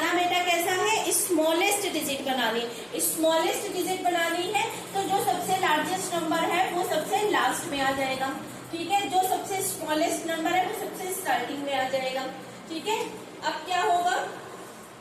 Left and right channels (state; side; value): identical; both; correlation 1.00